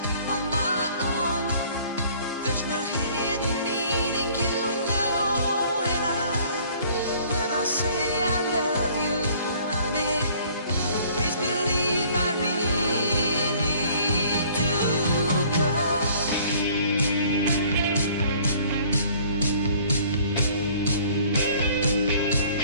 on my own. There's no hidden meaning, you know, and when I say I love you, honey, please believe I really do, 'cause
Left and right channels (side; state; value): both; inverted; correlation -0.55